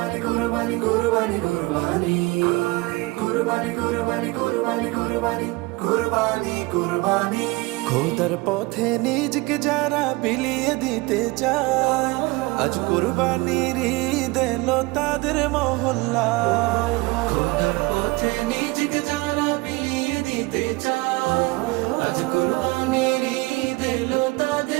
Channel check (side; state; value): left; quieter; 23.5 dB